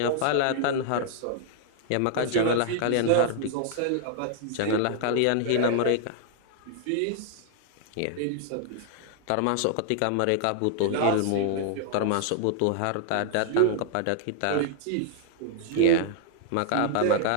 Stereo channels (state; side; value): different; both; correlation -0.01